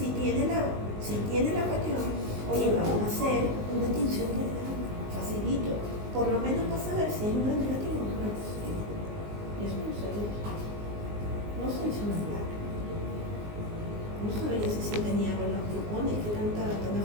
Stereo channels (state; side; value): late; left; 19 ms